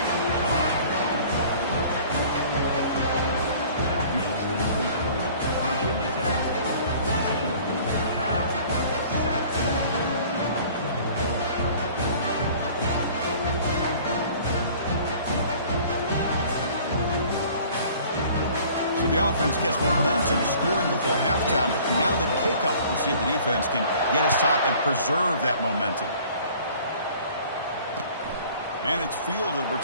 So the offense gets momentum scoring before halftime. Now the kickoff. We'll see if the defense can get his top and preserve that momentum. And it's fielded.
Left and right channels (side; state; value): both; inverted; correlation -0.50